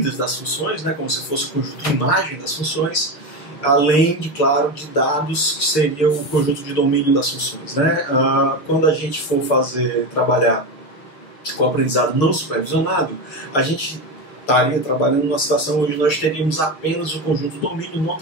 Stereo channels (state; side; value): late; right; 6.4 ms